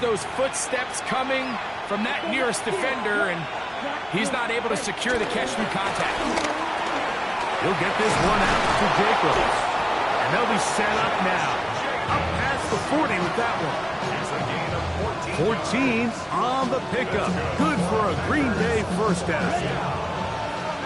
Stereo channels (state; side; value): identical; both; correlation 1.00